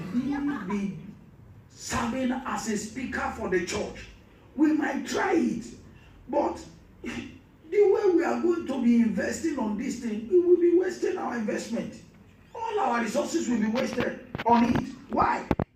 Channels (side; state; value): both; identical; correlation 1.00